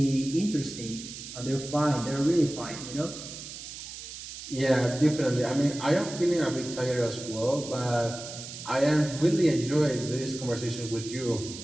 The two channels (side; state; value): right; noise; hiss, 11 dB below the sound